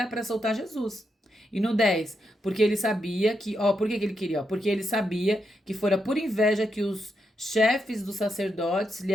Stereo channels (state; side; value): normal; both; correlation 0.83